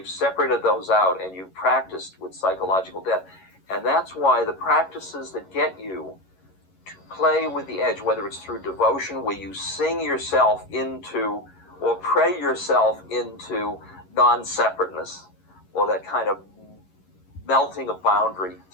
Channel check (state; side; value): late; right; 11 ms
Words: separated those out and you've practiced with psychological death, and that's why the practices that get you to play with the edge, whether it's through devotion, where you sing yourself into or pray yourself into non-separateness, or that kind of melting of boundary